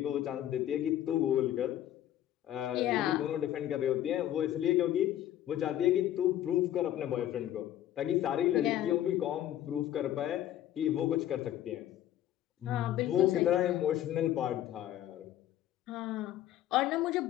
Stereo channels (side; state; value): right; quieter; 12.2 dB